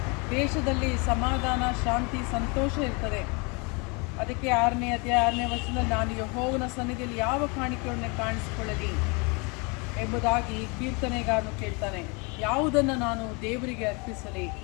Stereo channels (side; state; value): right; quieter; 30.8 dB